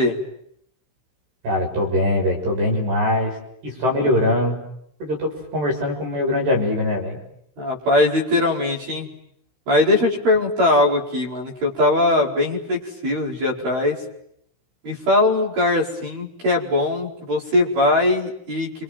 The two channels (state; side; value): late; left; 16 ms